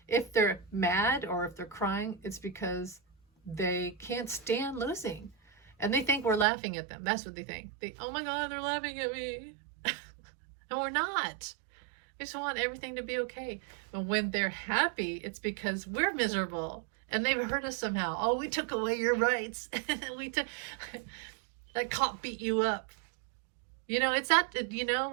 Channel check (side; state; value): left; drops out; at 6.5 s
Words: if they're mad or if they're crying, it's because they can't stand losing. And they think we're laughing at them. That's what they think. Oh my God, they're laughing at me. And we're not. We just want everything to be okay. But when they're happy, it's because we're miserable and they've hurt us somehow. Oh, we took away your rights. That cop beat you up. You know, it's that, you know